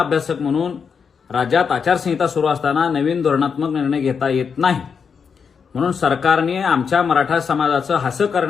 म्हणून राज्यात आचारसंहिता सुरू असताना नवीन धोरणात्मक निर्णय घेता येत नाही. म्हणून सरकारने आमच्या मराठा समाजाचं हसं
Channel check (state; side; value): quieter; right; 6.2 dB